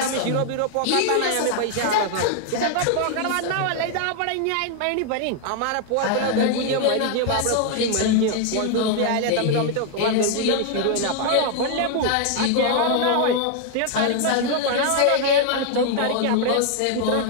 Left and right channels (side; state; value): both; different; correlation 0.00